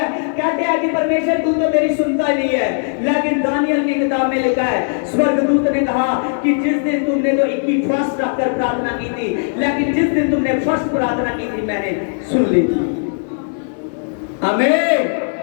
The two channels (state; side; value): silent; right; 67 dB below the other